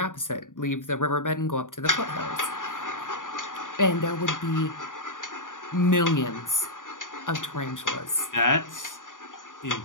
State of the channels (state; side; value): late; right; 0.88 ms